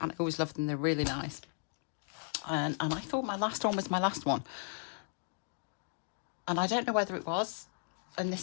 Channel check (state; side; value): silent; right; digital silence